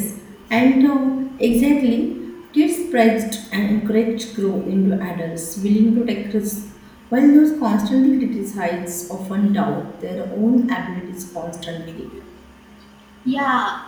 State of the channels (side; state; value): both; identical; correlation 1.00